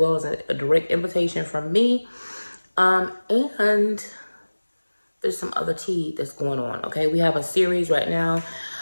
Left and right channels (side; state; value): both; inverted; correlation -1.00